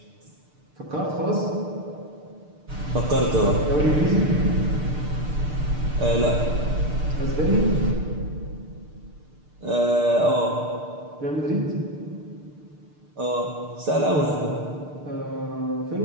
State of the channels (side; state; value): left; late; 6.7 ms